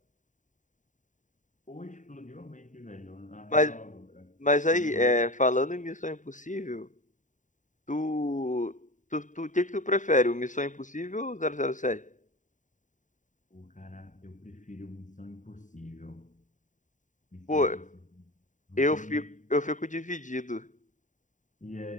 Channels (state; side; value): late; right; 0.36 ms